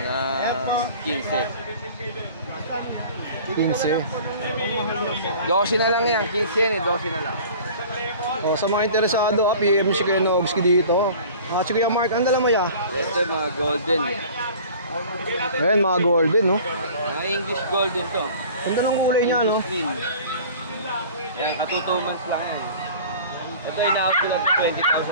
15. 15. 12 na lang yan, 15 yan eh, 12 na lang. Oh, sa mga interesado, PM si Kuya Nogski dito. Si Kuya Mark, ang dala mo ya? Ito mga golden eh. Ayan, mga golden no. Mga English golden to. Ganda ng kulay niya no. English mean. Yan, katutumans lang yan. Ito ina-out ko lang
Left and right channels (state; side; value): inverted; both; correlation -0.44